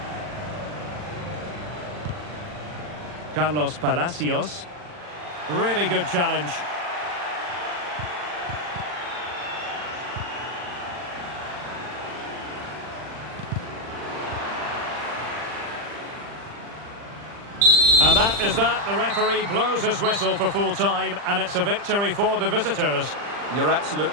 Carlos Palacios. Really good challenge. And that is that. The referee blows his whistle for full time, and it's a victory for the visitors. You're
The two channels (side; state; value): left; late; 40 ms